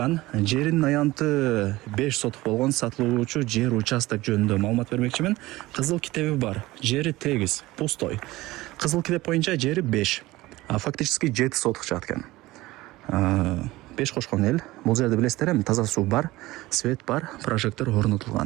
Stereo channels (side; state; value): left; quieter; 18.7 dB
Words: жеринин аянты 5 сотук болгон сатылуучу жер участок жөнүндө маалымат бермекчимин. Кызыл китеби бар, жери тегиз, пустой. Кызыл китеп боюнча жери 5, а фактически 7 сотук чыгат экен. 5 кошкон эл. Бул жерде билесиздер эми таза суу бар, свет бар, прожектор